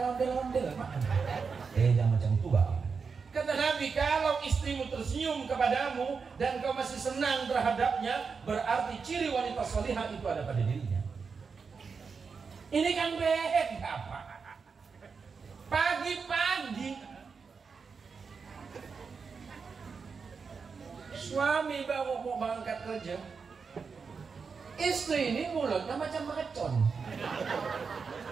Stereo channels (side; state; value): left; quieter; 5.3 dB